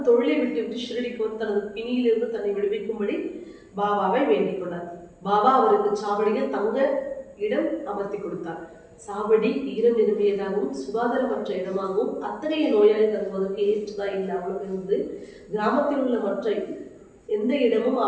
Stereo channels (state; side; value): identical; both; correlation 1.00